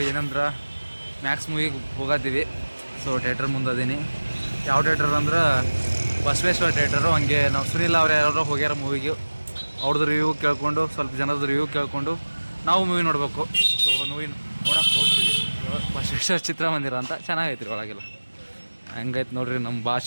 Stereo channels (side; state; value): both; inverted; correlation -1.00